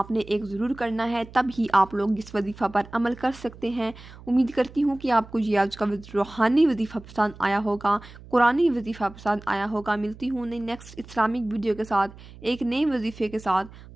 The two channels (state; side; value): noise; right; hum, 19 dB below the sound